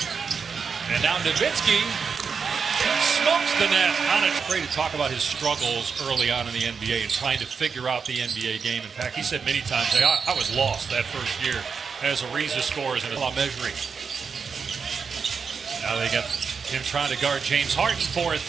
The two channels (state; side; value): quieter; left; 5.8 dB